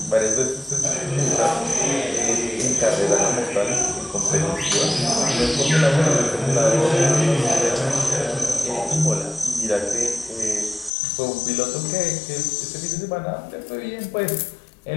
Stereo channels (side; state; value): right; drops out; at 10.9 s